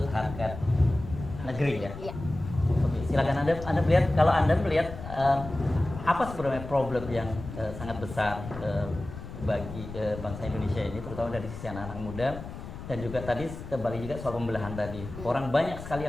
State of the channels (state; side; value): noise; left; rumble, 11 dB below the sound